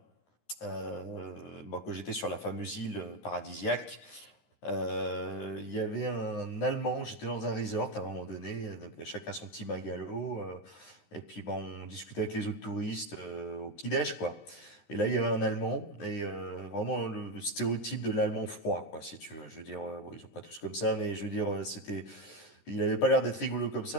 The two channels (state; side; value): late; right; 13 ms